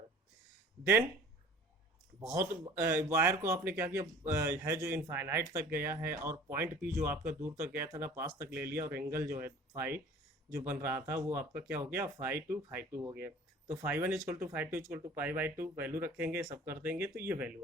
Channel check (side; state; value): both; normal; correlation 0.46